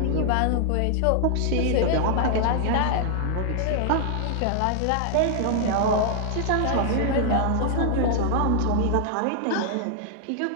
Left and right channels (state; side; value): different; both; correlation 0.00